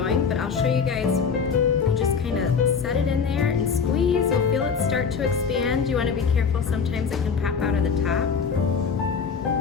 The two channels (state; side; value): quieter; right; 6.0 dB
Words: But I'll show you guys, you just kind of set it in there and squeeze. You'll feel it start to expand. You want to be careful, sometimes it can pop out of the top,